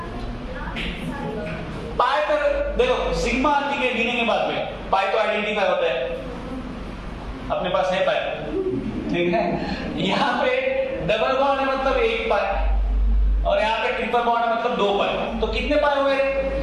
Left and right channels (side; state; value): both; identical; correlation 1.00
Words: पाई पर देखो, सिग्मा ठीक है गिने के बाद में, पाई तो आइडेंटिफाई होता है, अपने पास है पाई, ठीक है। यहाँ पे डबल बॉन्ड है मतलब 1 पाई, और यहाँ पे ट्रिपल बॉन्ड है मतलब 2 पाई। तो कितने पाई हुए?